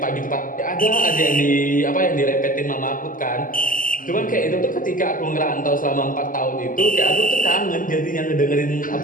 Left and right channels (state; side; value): late; right; 0.39 ms